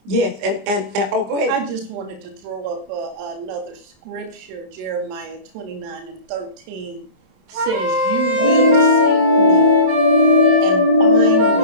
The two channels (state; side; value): late; left; 27 ms